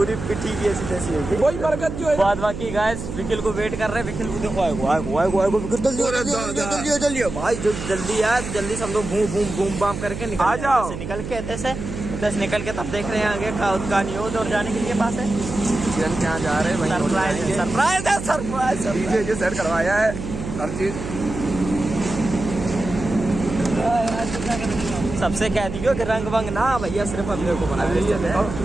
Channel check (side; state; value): right; noise; hum, 7 dB below the sound